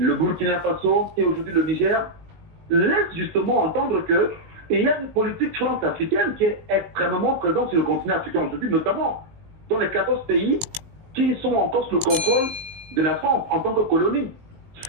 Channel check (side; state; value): left; late; 19 ms